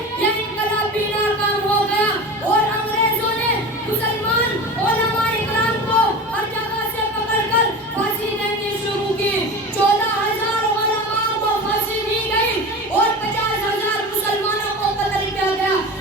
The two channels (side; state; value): both; normal; correlation 0.31